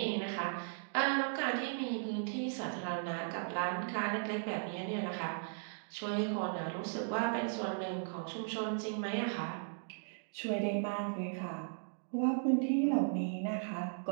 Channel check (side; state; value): left; silent; digital silence